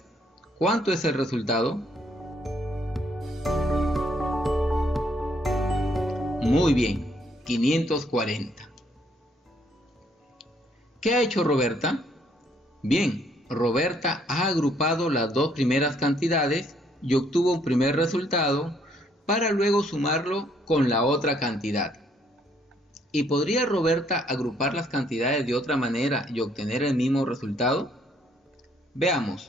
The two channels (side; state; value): both; normal; correlation 0.68